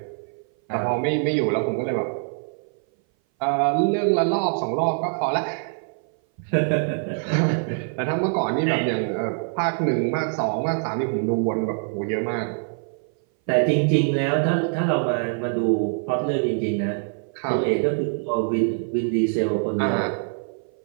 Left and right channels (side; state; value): left; silent; 58 dB below the other